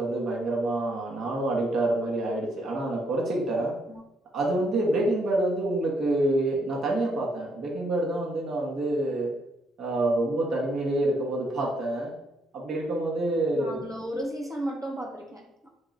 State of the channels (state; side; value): normal; both; correlation 0.73